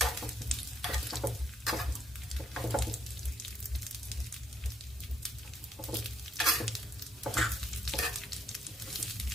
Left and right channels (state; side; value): normal; both; correlation 0.71